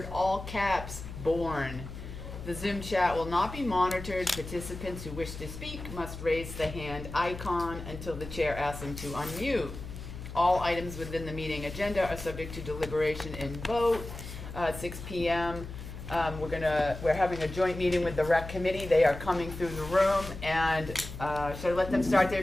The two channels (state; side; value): noise; left; hum, 10 dB below the sound